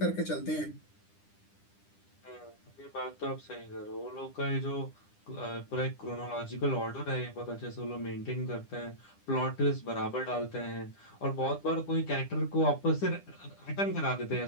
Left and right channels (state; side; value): late; right; 10 ms